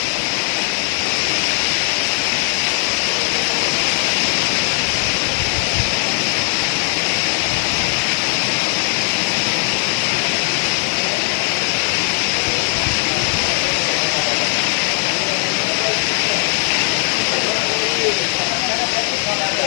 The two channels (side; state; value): right; silent; 55 dB below the other